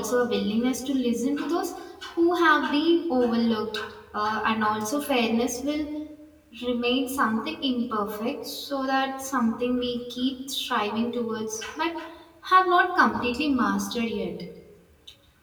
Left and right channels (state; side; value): identical; both; correlation 1.00